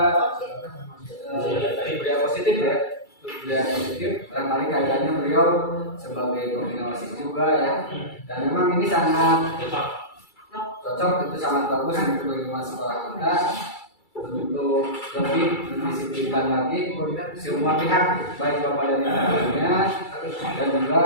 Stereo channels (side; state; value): right; late; 2.3 ms